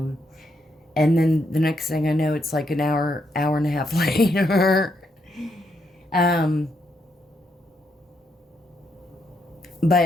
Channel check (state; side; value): normal; both; correlation 0.78